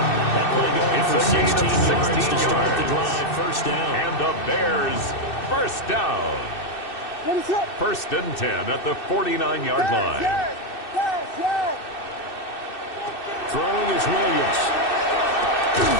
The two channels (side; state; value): right; late; 2.6 ms